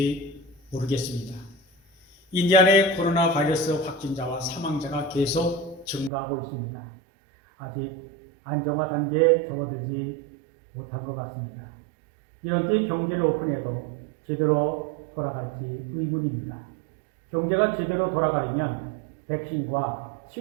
모르겠습니다. 인디아나의 코로나 바이러스 확진자와 사망자가 계속 증가하고 있습니다. 아직 안정화 단계에 접어들지 못한 것 같습니다. 이런 때 경제를 오픈해도 제대로 돌아갈지 의문입니다. 경제가 제대로 돌아가려면 백신과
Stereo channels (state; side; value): drops out; left; at 6.1 s